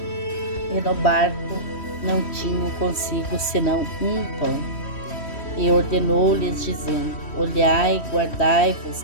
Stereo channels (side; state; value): right; late; 3.1 ms